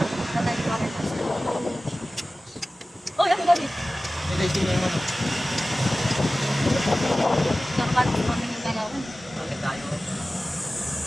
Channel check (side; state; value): both; normal; correlation 0.96